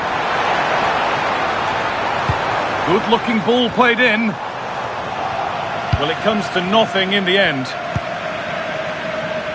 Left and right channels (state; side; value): identical; both; correlation 1.00